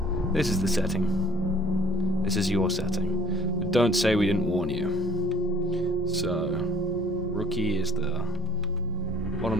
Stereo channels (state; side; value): normal; both; correlation 0.54